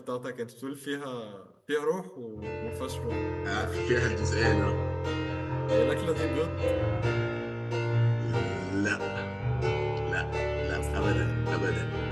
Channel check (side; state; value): both; identical; correlation 1.00